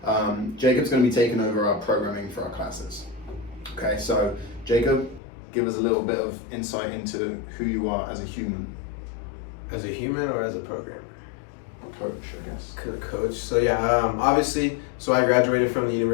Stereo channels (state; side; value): drops out; right; at 5.2 s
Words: Jacob's going to be taking over our programming for our classes. Okay, so Jacob, give us a little bit of insight into who you are as a human. As a human or as a programmer? Coach, I guess. Coach. So yeah, obviously, so I graduated from the